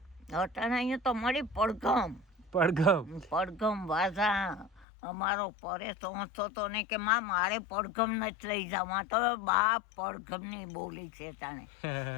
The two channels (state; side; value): drops out; right; at 4.9 s